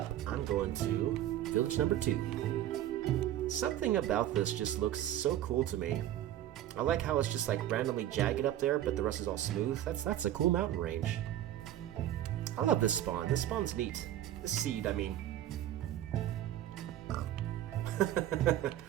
I'm going to village number 2. Something about this just looks so cool to me. I like how it's just like randomly jagged up there, but the rest is all smooth. That's a cool mountain range. I love this spawn. This spawn's neat. This seed, I mean.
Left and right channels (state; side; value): quieter; left; 12.4 dB